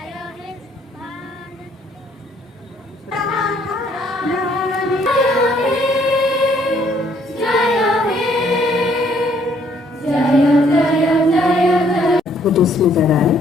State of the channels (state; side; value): normal; both; correlation 0.65